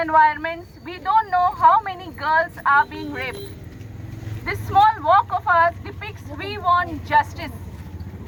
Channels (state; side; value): identical; both; correlation 1.00